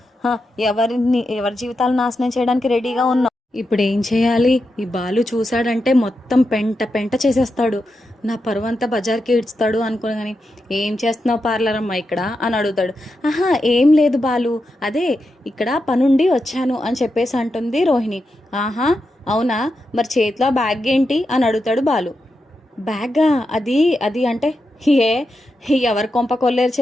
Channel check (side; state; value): both; normal; correlation 0.87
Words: ఎవరి జీవితాలు నాశనం చేయడానికి రెడీగా ఉన్నావు? ఇప్పుడు ఏం చేయాలి? ఈ బాలు చూశాడంటే మొత్తం పెంట పెంట చేసేస్తాడు, నా పరువంతా బజార్కి ఇడ్స్తాడు అనుకోగాని, ఏం చేస్తున్నావు పార్లర్ అమ్మా ఇక్కడ అని అడుగుతాడు. ఏం లేదు బాలు, అదే ఇక్కడ పనుండి వచ్చాను అని చెప్పేసి అంటుంది రోహిణి. అవునా, మరి చేతిలో బ్యాగ్ ఏంటి అని అడుగుతాడు బాలు. బ్యాగా? అది అంటే ఎవరి కొంప కొల్లేరు